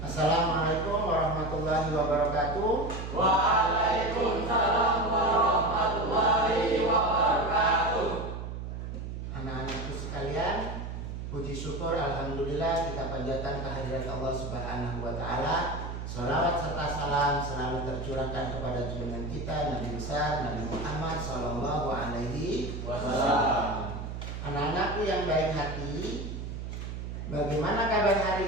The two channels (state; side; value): noise; right; hum, 6 dB below the sound